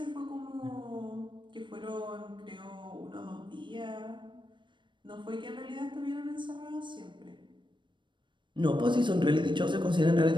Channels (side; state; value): left; late; 0.23 ms